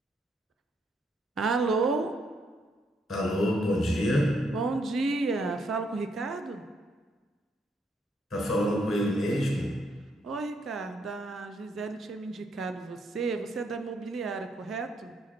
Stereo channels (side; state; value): both; normal; correlation 0.74